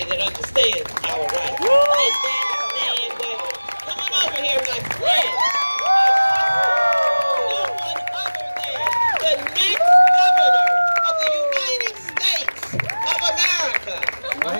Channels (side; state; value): both; inverted; correlation -1.00